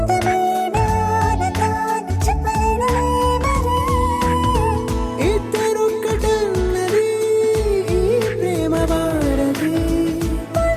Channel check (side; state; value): both; identical; correlation 1.00